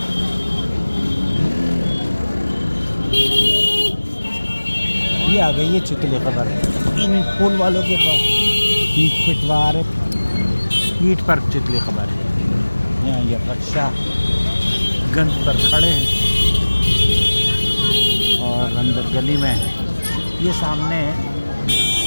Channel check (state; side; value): inverted; both; correlation -1.00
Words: ये आ गई है चितली खबर। इन फूल वालों के पास पीठ पर चितली खबर है। यहाँ ये रक्षा गंज पर खड़े हैं और अंदर गली में ये सामने